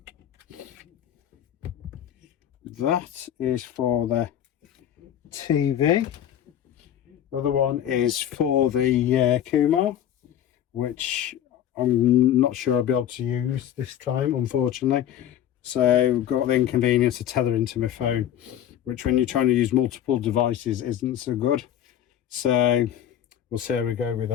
That is for the TV. The other one is for the Kumar, which I'm not sure I'll be able to use this time, unfortunately. So I've got the inconvenience of tethering to my phone, which when you're trying to use multiple devices isn't so good. So we'll see how we go with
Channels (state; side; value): quieter; right; 10.6 dB